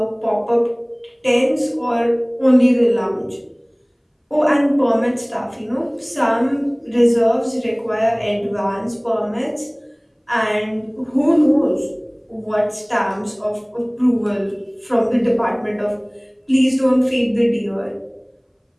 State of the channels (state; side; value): identical; both; correlation 1.00